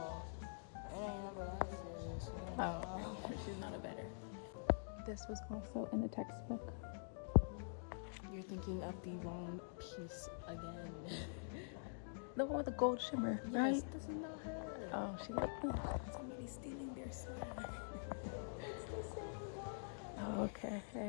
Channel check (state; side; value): silent; right; digital silence